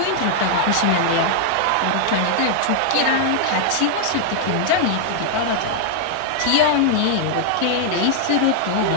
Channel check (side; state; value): both; different; correlation -0.01